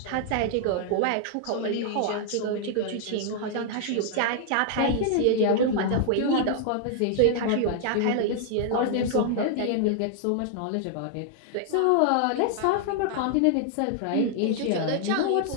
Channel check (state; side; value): different; both; correlation -0.01